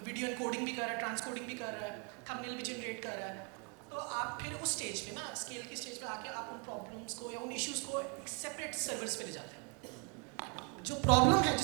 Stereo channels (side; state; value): left; quieter; 35.5 dB